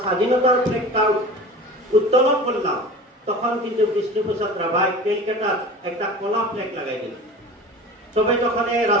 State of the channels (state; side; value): normal; both; correlation 0.37